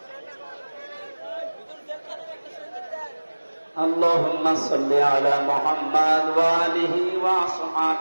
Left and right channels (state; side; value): inverted; both; correlation -1.00